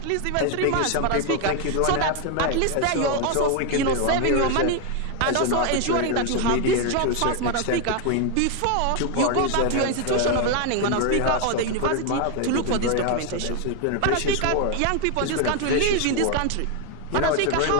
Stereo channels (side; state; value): both; different; correlation 0.01